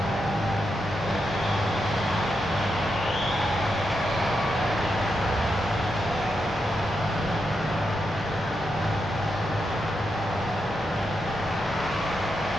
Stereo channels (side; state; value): both; normal; correlation 0.85